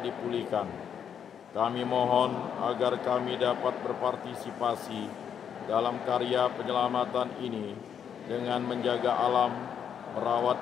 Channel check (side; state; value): right; quieter; 8.2 dB